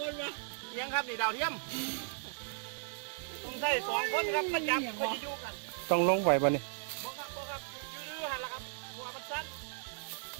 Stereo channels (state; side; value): silent; left; digital silence